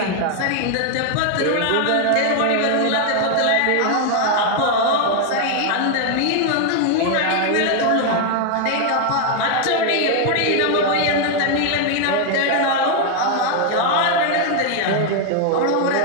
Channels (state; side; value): different; both; correlation 0.00